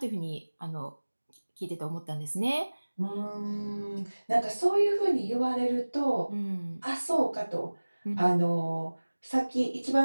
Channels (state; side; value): inverted; both; correlation -1.00